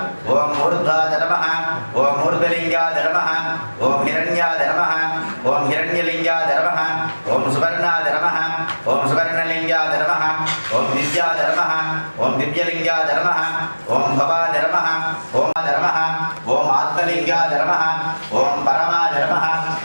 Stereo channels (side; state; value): both; inverted; correlation -1.00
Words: ஓம் மூர்த்வா தரவஹ, ஓம் மூர்த்தலிங்கா தரவஹ, ஓம் ஹிரண்யா தரவஹ, ஓம் ஹிரண்யலிங்கா தரவஹ, ஓம் சுவர்ணா தரவஹ, ஓம் சுவர்ணலிங்கா தரவஹ, ஓம் திவ்யா தரவஹ, ஓம் திவ்யலிங்கா தரவஹ, ஓம் பவா தரவஹ, ஓம் தரவஹ, ஓம் ஆத்மலிங்கா தரவஹ, ஓம் பரமா தரவஹ,